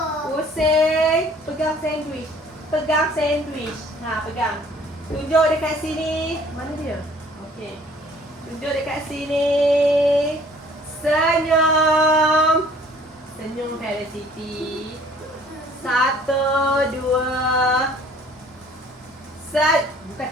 Pusing. Pegang sandwich. Pegang sandwich. Ha, pegang. Tunjuk dekat sini. Mana dia? Okey. Tunjuk dekat sini. Senyum. Senyum Felicity. 1, 2. Bukan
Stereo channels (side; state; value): both; normal; correlation 0.55